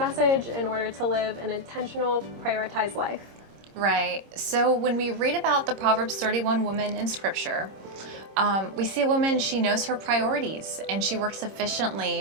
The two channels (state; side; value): late; left; 26 ms